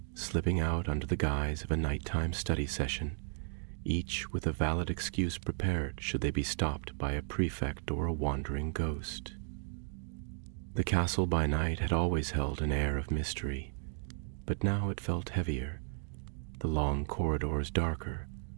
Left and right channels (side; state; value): left; silent; 55 dB below the other